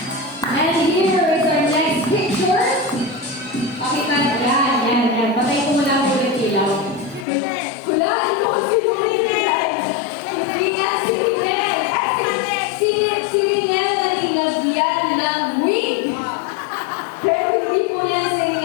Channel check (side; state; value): right; drops out; at 7.2 s